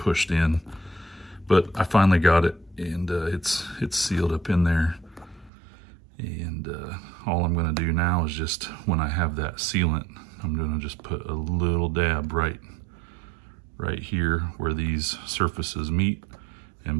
in. But I finally got it, and it's sealed up in there. And all I'm gonna do now is just, when I have that sealant, I'm gonna just put a little dab right here where these surfaces meet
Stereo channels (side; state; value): left; drops out; at 5.5 s